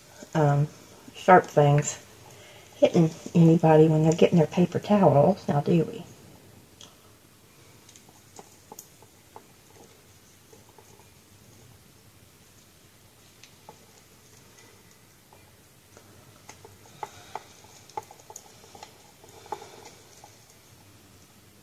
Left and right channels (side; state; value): both; identical; correlation 1.00